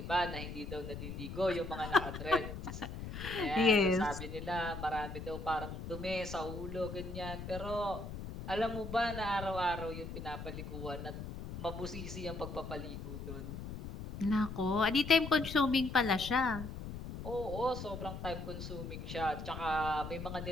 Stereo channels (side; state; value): left; noise; rumble, 8 dB below the sound